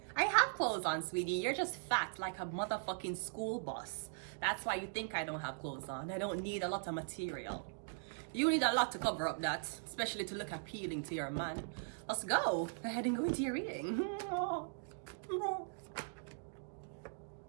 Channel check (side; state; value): left; silent; digital silence